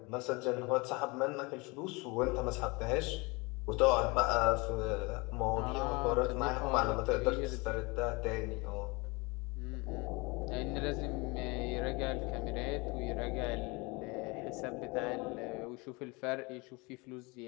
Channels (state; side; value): quieter; right; 26.7 dB